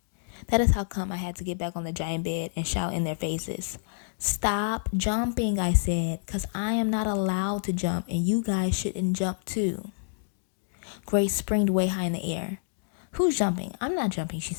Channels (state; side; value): silent; right; digital silence